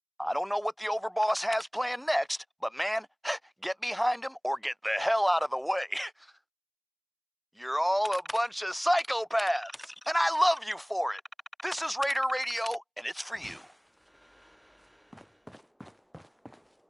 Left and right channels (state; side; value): identical; both; correlation 1.00